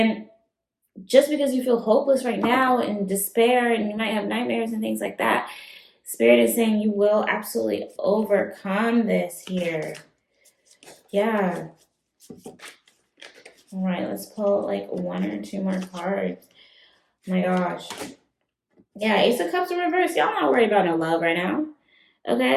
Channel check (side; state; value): both; identical; correlation 1.00